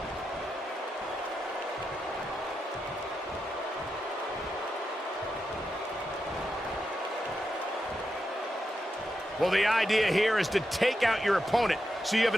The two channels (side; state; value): both; normal; correlation 0.87